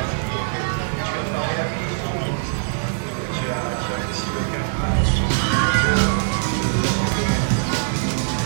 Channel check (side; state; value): left; silent; 64 dB below the other